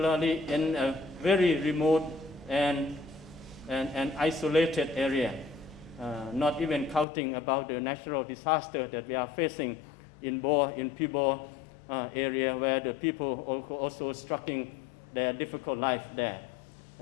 in a very remote and isolated area, not even counting about the natural disaster that we are facing in Pibor area, where the people also struggling their difficult life there,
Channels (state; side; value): drops out; right; at 7.1 s